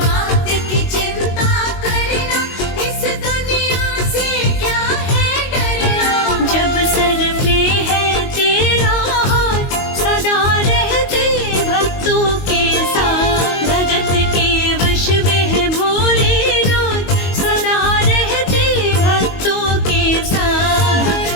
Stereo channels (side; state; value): right; late; 22 ms